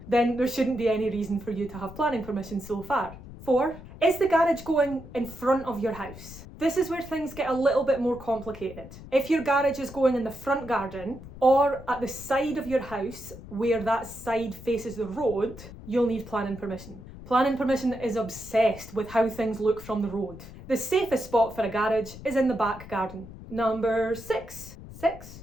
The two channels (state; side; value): noise; left; rumble, 15 dB below the sound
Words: then there shouldn't be any reason for you to have planning permission so far. 4, is the garage going in front of your house? This is where things get a little bit more complicated. If your garage is going in the front garden or at the side of your house where that side faces the road, you'll need planning permission. Planning permission is obsessed with how things look from the road. The safest spot for a garage is in the back garden. Number 6.